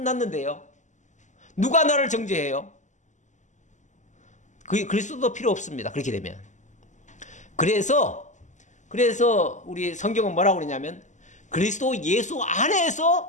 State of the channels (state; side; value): late; right; 0.35 ms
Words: 누가 나를 정죄해요? 그리스도도 필요 없습니다. 그렇게 되면. 그래서 우리 성경은 뭐라고 그러냐면 그리스도 예수